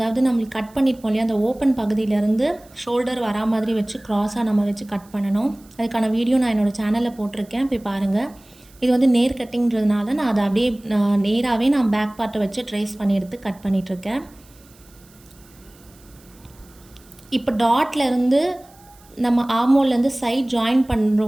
நம்மளுக்கு கட் பண்ணியிருப்போம் இல்லையா, அந்த ஓப்பன் பகுதியிலேருந்து ஷோல்டர் வரா மாதிரி வச்சு க்ராஸாக நம்ம வச்சு கட் பண்ணணும். அதுக்கான வீடியோ நான் என்னோடய சேனலில் போட்டிருக்கேன், போய் பாருங்கள். இது வந்து நேர் கட்டிங்கிறதுனால நான் அதை அப்படியே நேராகவே நான் பேக் பார்ட்டை வச்சு ட்ரேஸ் பண்ணி எடுத்து கட் பண்ணிகிட்ருக்கேன். இப்போ டாட்லேருந்து நம்ம ஆர்மோல்லேருந்து சைட் ஜாயின் பண்ணுற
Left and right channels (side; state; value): right; noise; hiss, 28 dB below the sound